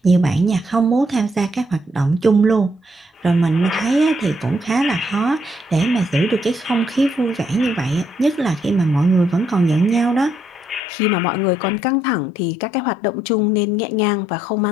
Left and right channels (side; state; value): right; drops out; at 10.9 s